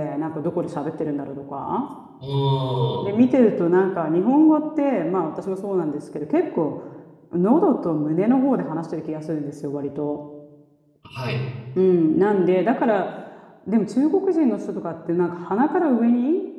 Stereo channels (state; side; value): identical; both; correlation 1.00